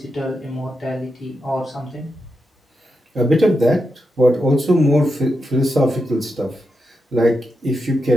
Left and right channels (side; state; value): both; normal; correlation 0.86